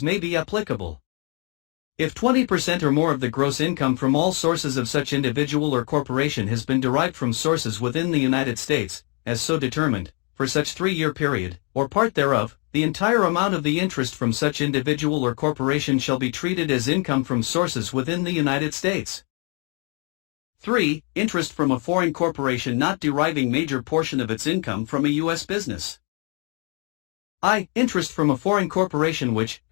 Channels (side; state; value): right; quieter; 36.6 dB